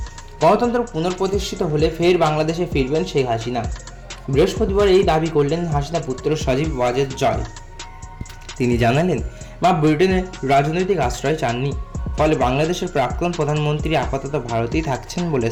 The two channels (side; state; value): both; identical; correlation 1.00